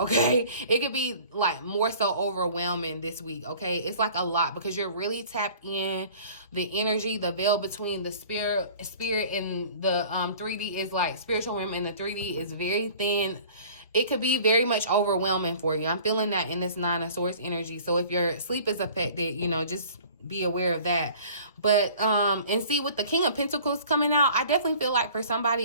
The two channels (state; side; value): inverted; both; correlation -0.47